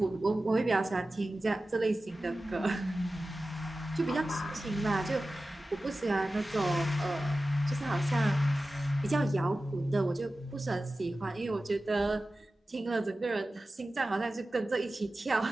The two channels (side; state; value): both; normal; correlation 0.95